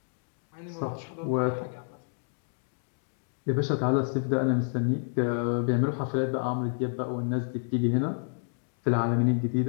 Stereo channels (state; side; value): silent; right; 58 dB below the other